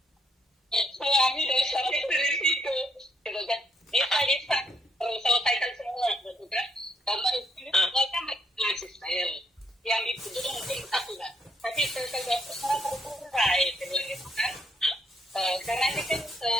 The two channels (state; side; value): normal; both; correlation 0.72